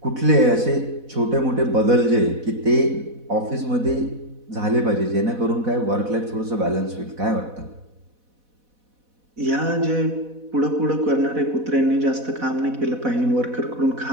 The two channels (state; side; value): late; left; 4.1 ms